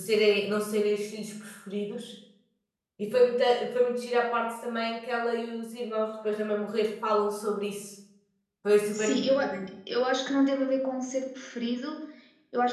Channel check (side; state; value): both; identical; correlation 1.00